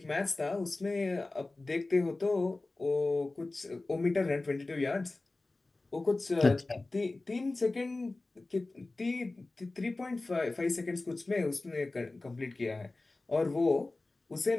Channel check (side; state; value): right; quieter; 3.2 dB